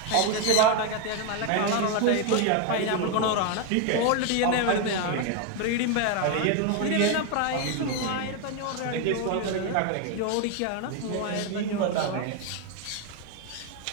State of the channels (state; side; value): different; both; correlation 0.01